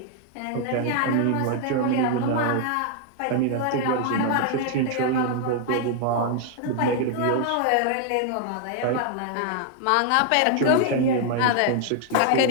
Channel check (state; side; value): different; both; correlation 0.00